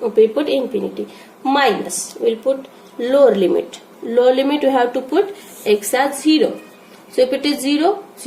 We put infinity. Minus, we'll put lower limit. Lower limit we have to put x as 0. So if it is 0,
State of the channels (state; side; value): identical; both; correlation 1.00